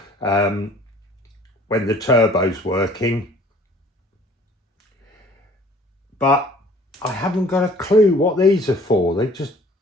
when the turbo's working. But I haven't got a clue what these are for. I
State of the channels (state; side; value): normal; both; correlation 0.52